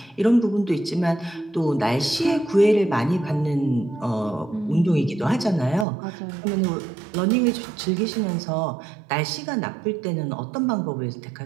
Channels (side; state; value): left; drops out; at 5.9 s